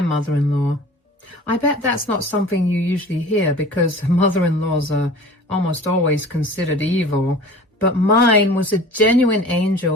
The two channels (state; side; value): normal; both; correlation 0.42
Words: mother-in-law. I bet that's not something you usually hear because mother-in-laws are almost always considered evil, but mine was a genuine